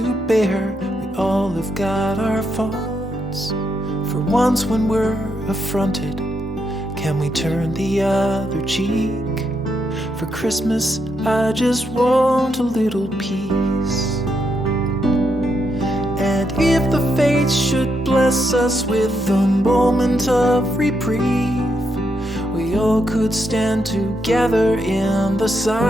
bear, we all have got our faults. For once when we're affronted, can we turn the other cheek? For Christmas I just want a little peace. And if the fates should bless us with a moment of reprieve, we all could stand together in the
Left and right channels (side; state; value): both; normal; correlation 0.80